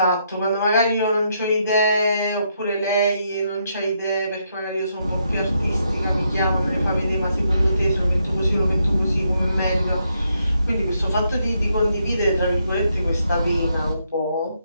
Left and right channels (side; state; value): both; inverted; correlation -0.77